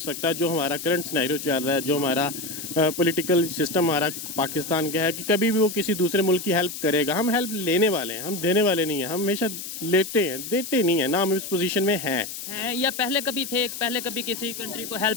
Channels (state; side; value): noise; left; hiss, 8 dB below the sound